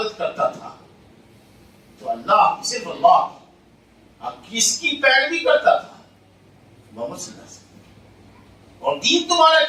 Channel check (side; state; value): both; identical; correlation 1.00